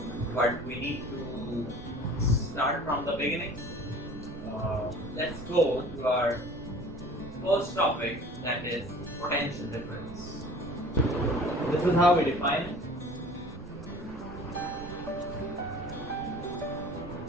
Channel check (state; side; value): noise; right; rumble, 14 dB below the sound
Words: but we need to start from the beginning. Let's go to our first topic, that is potential difference. This is how we define it.